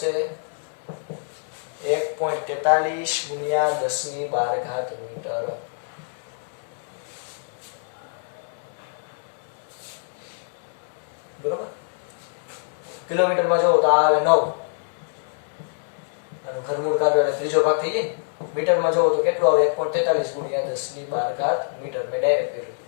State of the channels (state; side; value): silent; right; digital silence